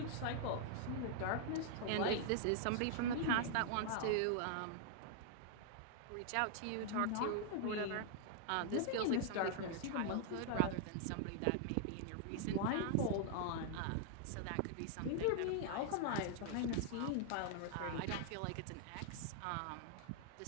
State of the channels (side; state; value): both; different; correlation 0.00